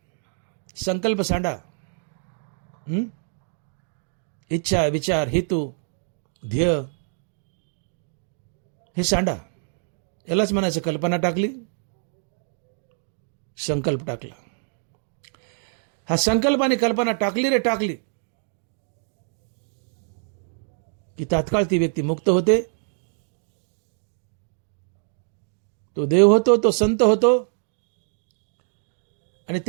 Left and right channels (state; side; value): silent; left; 61 dB below the other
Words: संकल्प सांडा. इच्छा, विचार, हेतू, ध्येय हे सांडा. यालाच म्हणायचं कल्पना टाकली, संकल्प टाकला. हा संकल्प आणि कल्पना टाकली रे टाकली की तात्काळ ती व्यक्ती मुक्त होते, तो देव होतो, तो संत होतो. आणि